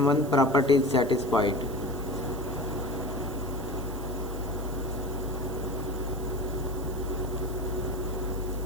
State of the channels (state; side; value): noise; right; hiss, 18 dB below the sound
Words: property is satisfied.